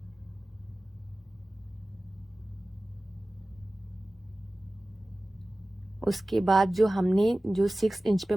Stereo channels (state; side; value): normal; both; correlation 0.97